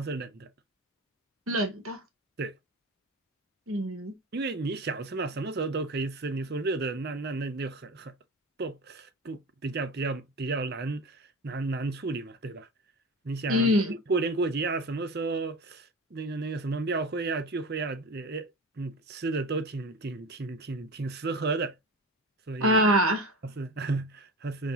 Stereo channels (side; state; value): both; normal; correlation 0.30